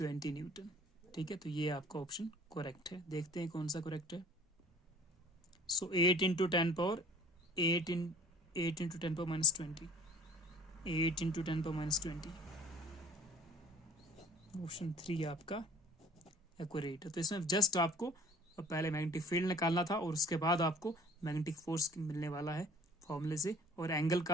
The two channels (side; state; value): both; normal; correlation 0.50